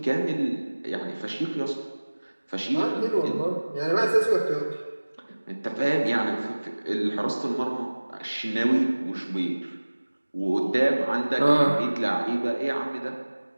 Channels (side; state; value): both; inverted; correlation -1.00